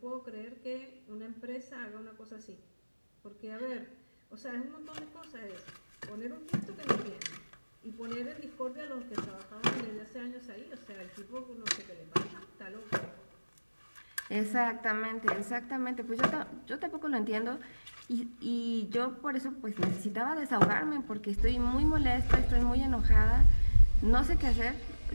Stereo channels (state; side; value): inverted; both; correlation -1.00